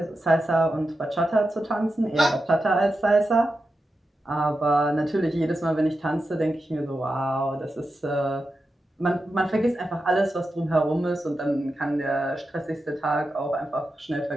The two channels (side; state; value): both; normal; correlation 0.90